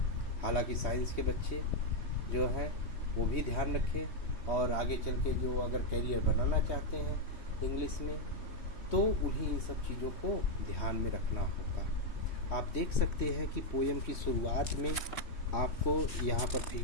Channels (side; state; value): right; late; 3.1 ms